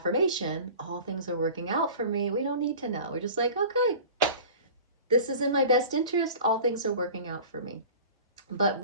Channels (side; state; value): both; inverted; correlation -0.40